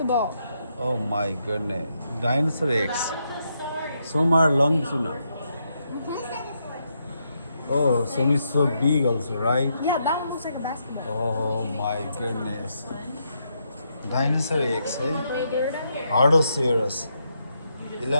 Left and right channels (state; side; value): inverted; both; correlation -0.79